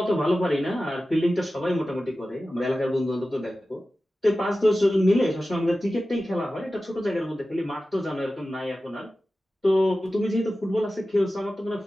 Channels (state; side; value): normal; both; correlation 0.95